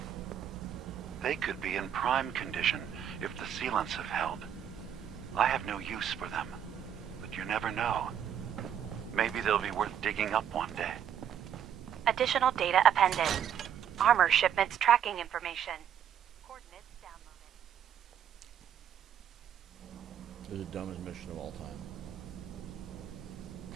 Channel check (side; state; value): left; quieter; 9.3 dB